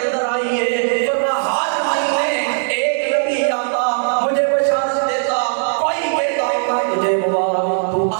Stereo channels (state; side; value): silent; left; digital silence